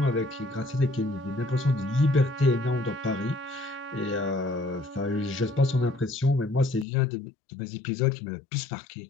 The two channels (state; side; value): drops out; right; at 6.9 s